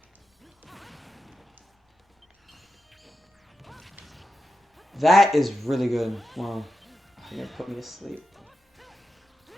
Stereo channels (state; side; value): normal; both; correlation 0.89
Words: That is really good. Wow. You're gonna put me to sleep.